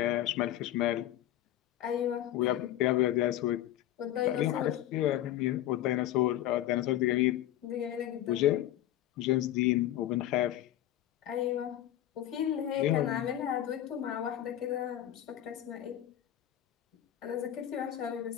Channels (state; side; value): quieter; right; 12.8 dB